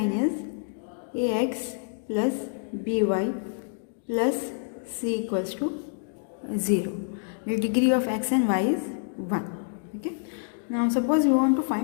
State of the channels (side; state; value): right; silent; digital silence